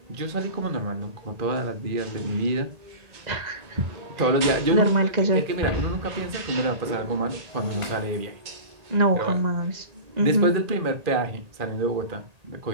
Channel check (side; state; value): left; late; 1.8 ms